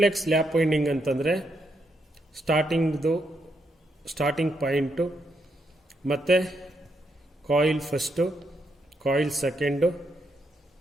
lap winding ಅಂತಂದರೆ ಸ್ಟಾರ್ಟಿಂಗ್ ಪಾಯಿಂಟು ಮತ್ತು coil first, coil second,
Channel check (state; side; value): normal; both; correlation 0.79